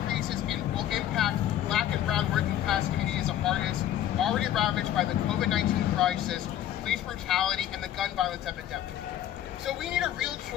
will impact Black and brown working class communities the hardest, already ravaged by the COVID-19 crisis, police brutality, and the gun violence epidemic. So we need a real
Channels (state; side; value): quieter; right; 11.7 dB